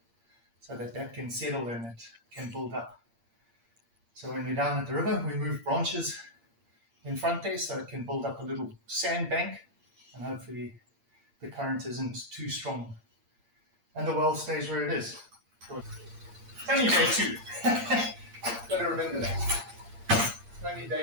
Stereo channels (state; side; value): late; left; 8.7 ms